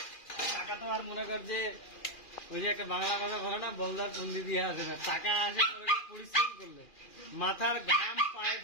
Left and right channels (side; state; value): right; late; 2.4 ms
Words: টাকা তো আর মনে কর যে ওই যে একটা বাংলা কথা বলে না, বলদার পন্ডি দিয়ে আসে না, টাকা আসে পরিশ্রম করলে, মাথার ঘাম পায়ে